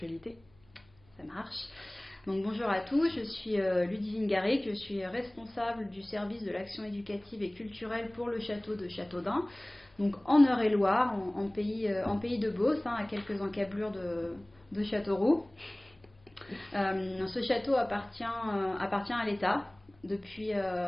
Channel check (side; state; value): left; noise; hum, 30 dB below the sound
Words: Ça marche. Donc bonjour à tous, je suis Ludivine Garrick, je suis responsable du service de l'action éducative et culturelle pour le château de Châteaudun, donc en Eure-et-Loire, en pays de Beauce, à quelques encablures de Châteauroux. Ce château appartient à l'État depuis